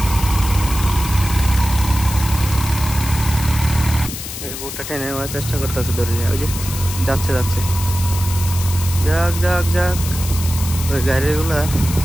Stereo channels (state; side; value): noise; left; hiss, 8 dB below the sound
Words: এই বোটটা টেনে নেওয়ার চেষ্টা করতেছে, ধরে নিয়ে ওই যে যাচ্ছে যাচ্ছে, যাক যাক যাক। ওই গাড়িগুলা